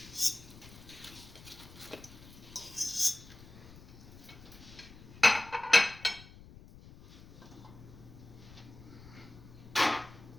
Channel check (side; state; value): left; noise; rumble, 18 dB below the sound